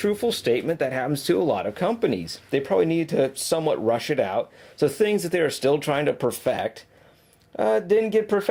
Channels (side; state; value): both; identical; correlation 1.00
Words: statement that happens to a lot of companies. They probably need to somewhat rush it out, so things that they are still trying to perfect didn't get